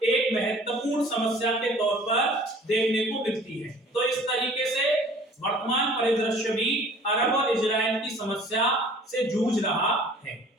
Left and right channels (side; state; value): both; normal; correlation 0.50